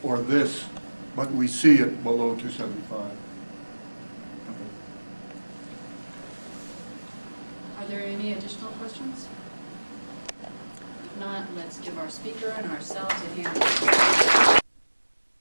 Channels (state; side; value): inverted; both; correlation -1.00